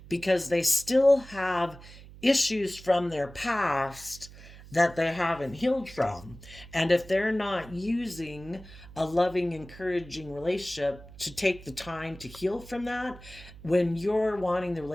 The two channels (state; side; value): noise; right; hum, 18 dB below the sound